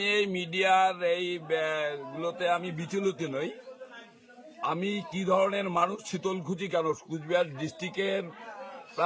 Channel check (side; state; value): both; identical; correlation 1.00